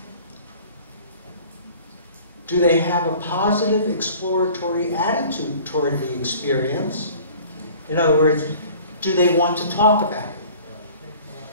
Do they have a positive exploratory attitude toward the experience? In other words, do they want to talk about it?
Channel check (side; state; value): both; inverted; correlation -0.48